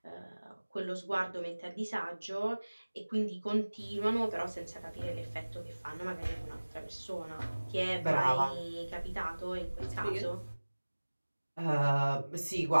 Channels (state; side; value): inverted; both; correlation -1.00